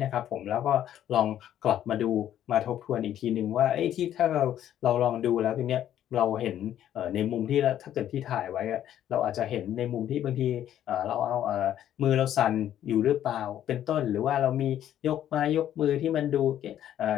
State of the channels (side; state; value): right; quieter; 11.2 dB